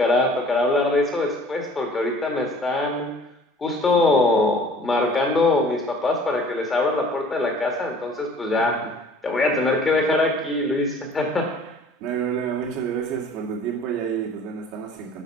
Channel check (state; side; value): normal; both; correlation 0.50